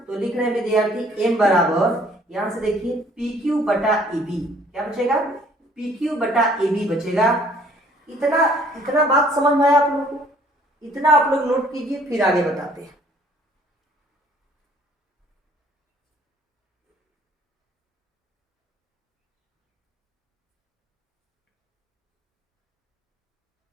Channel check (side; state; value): both; normal; correlation 0.59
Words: तो लिख रहे हैं विद्यार्थी m बराबर, यहाँ से देखिए PQ बटा AB, क्या बचेगा? PQ बटा AB बचेगा। इतना बात समझ में आया आप लोगों को? इतना आप लोग नोट कीजिए, फिर आगे बताते हैं।